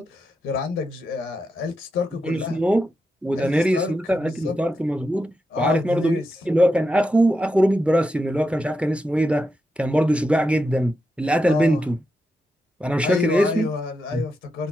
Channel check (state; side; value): normal; both; correlation 0.87